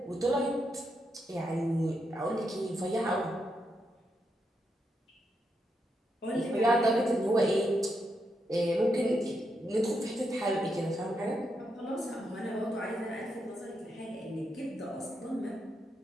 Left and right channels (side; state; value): both; normal; correlation 0.82